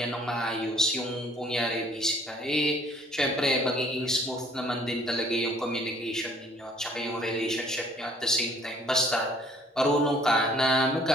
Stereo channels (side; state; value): both; normal; correlation 0.59